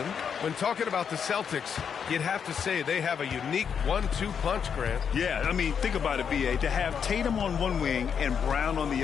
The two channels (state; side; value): quieter; right; 7.2 dB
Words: When talking about the Celtics, you'd have to say they have a unique 1-2 punch, Grant. Yeah, I mean, think about it, BA. To have Tatum on one wing and Brown on the